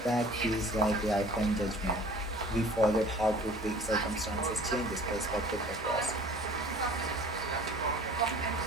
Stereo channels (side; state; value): both; normal; correlation 0.47